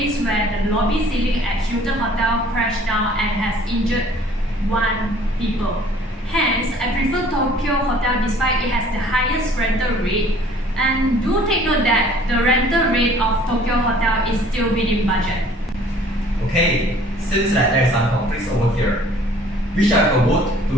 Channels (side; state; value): both; normal; correlation 0.54